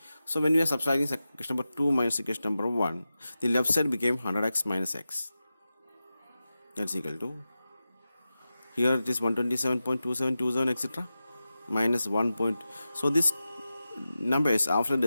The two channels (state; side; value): inverted; both; correlation -0.93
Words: So when we are subtracting equation number 2 minus equation number 1, the left side became 100x minus x. That's equal to, here it is 127.2727, etc. minus 1 point. So this numbers after